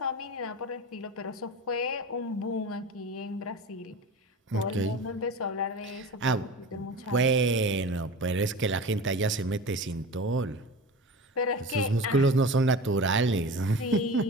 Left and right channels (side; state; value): both; normal; correlation 0.33